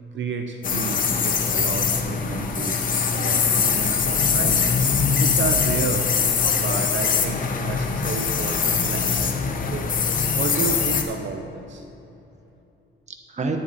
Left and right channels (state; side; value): quieter; right; 4.0 dB